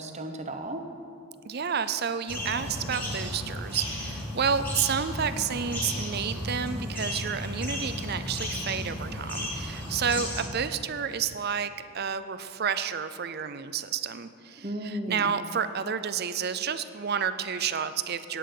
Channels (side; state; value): left; quieter; 4.9 dB